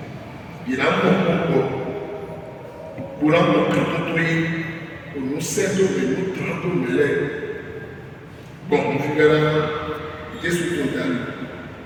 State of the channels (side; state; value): both; identical; correlation 1.00